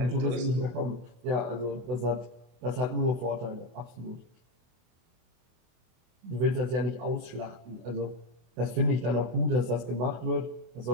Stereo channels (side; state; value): left; late; 25 ms